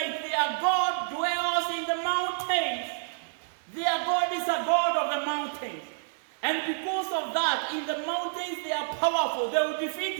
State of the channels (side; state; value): left; silent; digital silence